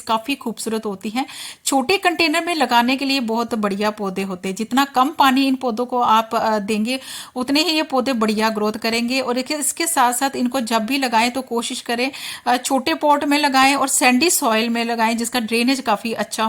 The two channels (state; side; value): identical; both; correlation 1.00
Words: काफ़ी खूबसूरत होती हैं। छोटे कंटेनर में लगाने के लिए बहुत बढ़िया पौधे होते हैं। जितना कम पानी इन पौधों को आप देंगे उतने ही ये पौधे बढ़िया ग्रोथ करेंगे। और इसके साथ साथ इनको जब भी लगाएं तो कोशिश करें छोटे पॉट में लगाएं और सैंडी सॉइल में लगाएं, जिसका ड्रेनेज काफ़ी अच्छा